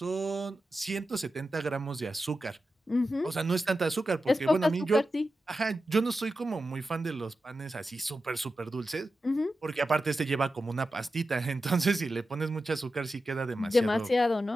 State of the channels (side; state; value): both; normal; correlation 0.91